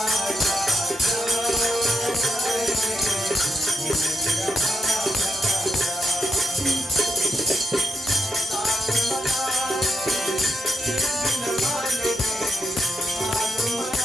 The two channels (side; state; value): both; normal; correlation 0.82